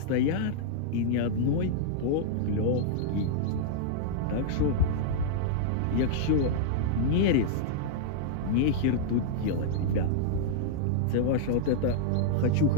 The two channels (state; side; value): different; both; correlation -0.02